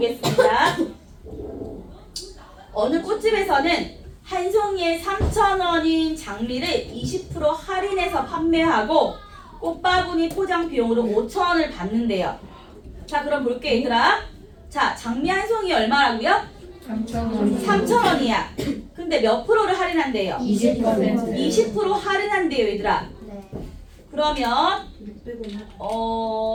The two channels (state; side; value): identical; both; correlation 1.00